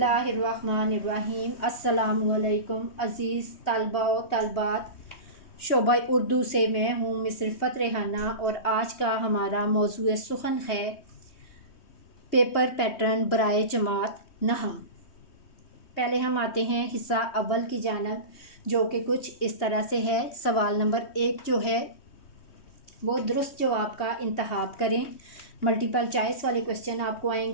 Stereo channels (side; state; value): right; late; 3.2 ms